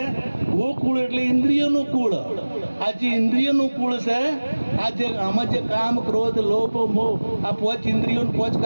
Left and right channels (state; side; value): inverted; both; correlation -1.00